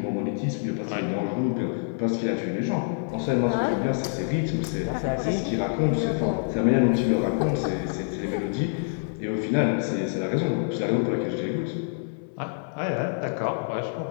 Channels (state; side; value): silent; right; 58 dB below the other